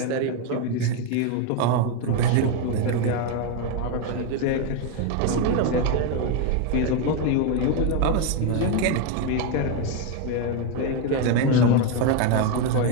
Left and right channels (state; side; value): different; both; correlation 0.02